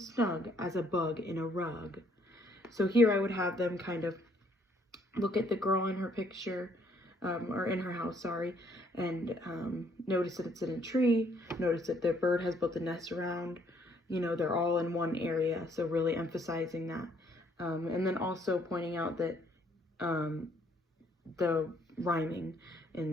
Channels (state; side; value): normal; both; correlation 0.66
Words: as a bug in a rug. So here I would have them kind of look at the girl in her picture, or in her house, sorry, and notice that it's in a tree, notice that the bird has built a nest around, they're all in one area, so really emphasizing that. And then also pointing out that the rhyming in